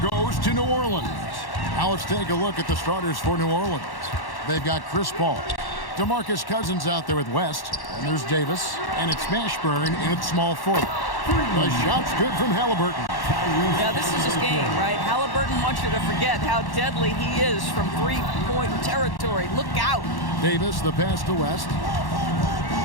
goes to New Orleans. Now let's take a look at the starters for New Orleans. They've got Chris Paul, DeMarcus Cousins out there with West, and there's Davis, and it's Mashburn in at small forward. The shot's good from Halliburton. Yeah, this is his game, right? Halliburton wants you to forget how deadly he is from three-point territory. Look out. Davis, the pass to West.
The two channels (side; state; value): right; late; 1.1 ms